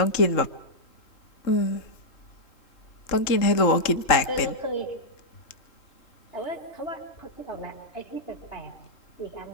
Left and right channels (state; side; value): late; right; 3.7 ms